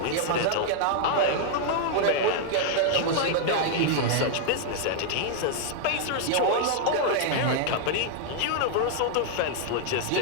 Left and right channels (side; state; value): both; different; correlation -0.01